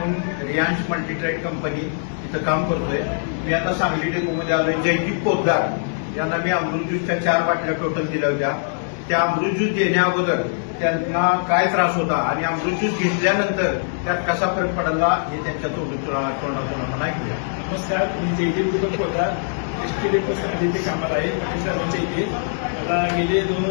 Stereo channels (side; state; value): right; silent; 64 dB below the other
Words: रियांश मल्टीट्रेड कंपनी इथं काम करतोय. मी आता सांगली डेपोमध्ये आलोय. जयदीप पोद्दार यांना मी अमृत ज्यूसच्या 4 बाटल्या टोटल दिल्या होत्या. त्या अमृत ज्यूस देण्या अगोदर त्यांना काय त्रास होता आणि अमृत ज्यूस घेतल्यानंतर त्यात कसा फरक पडला हे त्यांच्या तोंडातून आपण ऐकूया. नमस्कार, मी जयदीप पोद्दार एसटी डेपो सांगली इथे कामाला आहे. पाटील साहेबांच्या इथे मला गेले 2